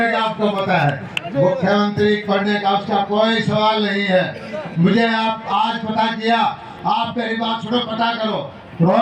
आपको पता है। मुख्यमंत्री बनने का उसका कोई सवाल नहीं है। मुझे आप आज पता किया, आप मेरी बात सुनो, पता करो।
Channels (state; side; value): identical; both; correlation 1.00